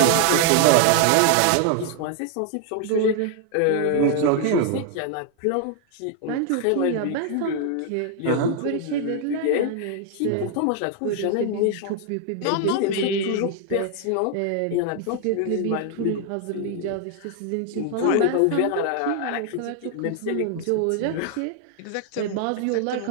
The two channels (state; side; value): different; both; correlation 0.00